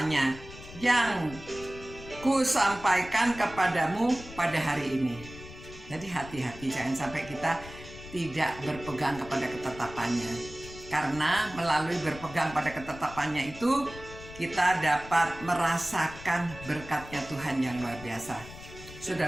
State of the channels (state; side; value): noise; left; rumble, 15 dB below the sound